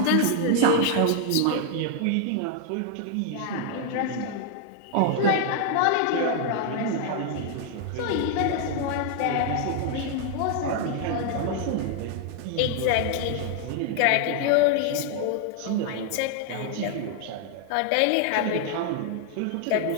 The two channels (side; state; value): both; different; correlation 0.00